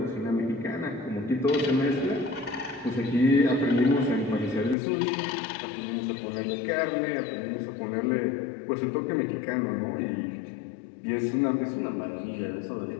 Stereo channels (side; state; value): right; drops out; at 4.8 s